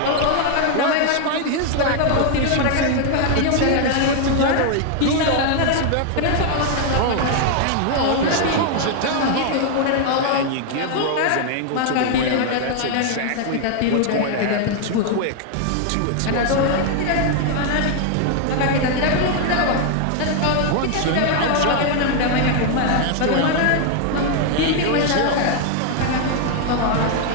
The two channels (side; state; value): both; different; correlation 0.00